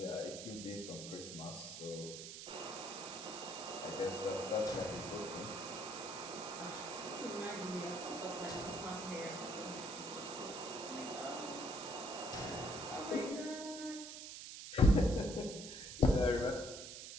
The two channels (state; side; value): noise; right; hiss, 9 dB below the sound